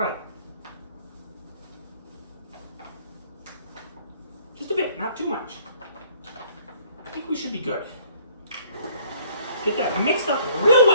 Just a bit, not too much. I think we should be good. Get that mixed up real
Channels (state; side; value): inverted; both; correlation -0.59